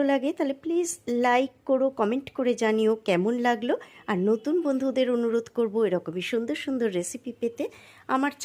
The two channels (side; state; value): both; identical; correlation 1.00